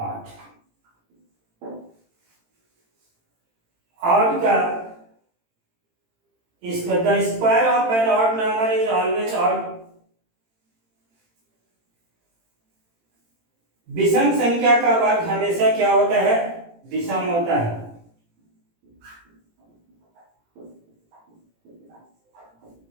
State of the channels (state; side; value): late; left; 18 ms